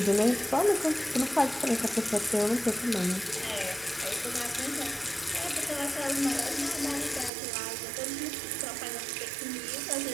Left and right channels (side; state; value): left; drops out; at 7.3 s